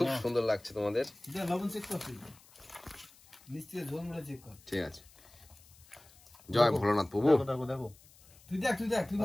সুন্দর লাগছে তোমাদের। লবণ চেক করছি, মিষ্টি ঝোল মুড়ে চেক কর। ঠিক আছে, জয় ভোলানাথ প্রভু। দেখো দেখো তুই দেখ তুই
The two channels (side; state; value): left; noise; hiss, 25 dB below the sound